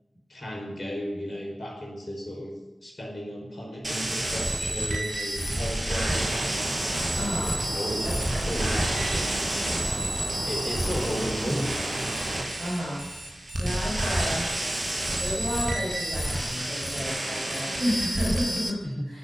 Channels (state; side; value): normal; both; correlation 0.95